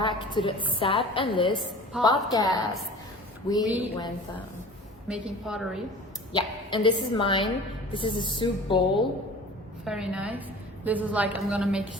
to the Sab and Liz podcast. We went making pottery. yeah, and this is mine. This is a soup bowl. Very nice. Liz was like, I'm gonna make a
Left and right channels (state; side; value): normal; both; correlation 0.42